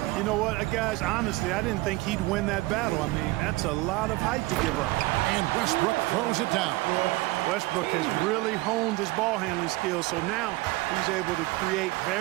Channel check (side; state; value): left; quieter; 20.9 dB